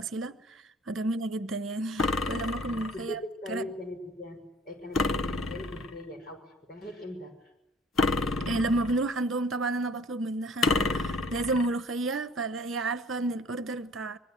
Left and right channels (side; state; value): both; normal; correlation 0.52